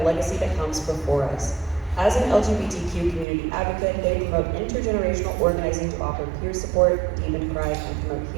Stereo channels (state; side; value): drops out; left; at 3.2 s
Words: that comes before us. As an LGBTQ community advocate, they promote intergenerational organizing to offer peer support, deepen pride, and promote